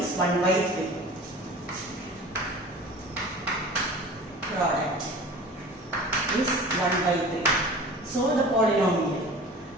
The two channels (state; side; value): normal; both; correlation 0.40